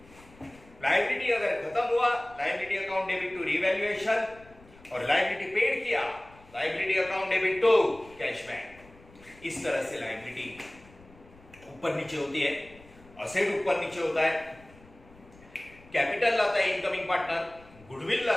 लायबिलिटी अगर खत्म हुआ, liability account debit to revaluation, और लायबिलिटी पेड किया, liability account debit to cash bank. इस तरह से लायबिलिटी ऊपर नीचे होती है, असेट ऊपर नीचे होता है, कैपिटल लाता है इनकमिंग पार्टनर, गुडविल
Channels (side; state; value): left; noise; rumble, 24 dB below the sound